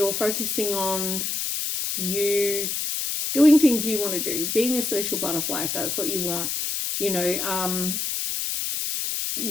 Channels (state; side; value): noise; left; hiss, 1 dB below the sound